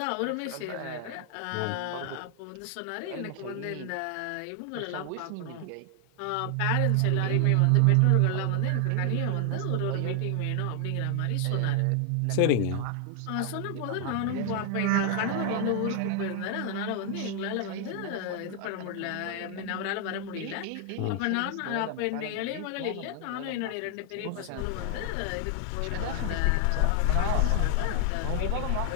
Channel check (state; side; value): different; both; correlation 0.00